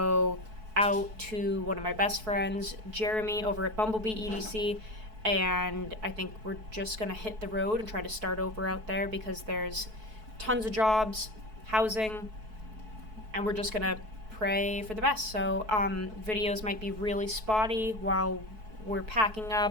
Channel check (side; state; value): left; late; 4.6 ms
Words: out to one of my best friends, Jeremy, over at Bumblebee EDC, and I think we're just going to hit the road and try to start over out there, because there's tons of jobs, housing, and we're just going to pray for the best. So videos might be really spotty while we're packing